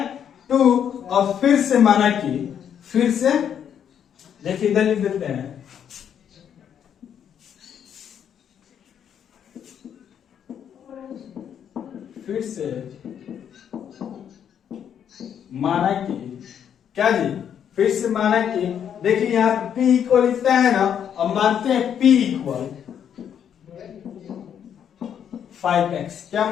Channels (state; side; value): quieter; right; 8.8 dB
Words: 2। और फिर से माना कि, फिर से देखिए इधर लिख देते हैं, फिर से माना कि क्या जी? फिर से माना कि देखिए यहाँ P इक्वल इतना है ना, अब मानते हैं P इक्वल 5x। क्या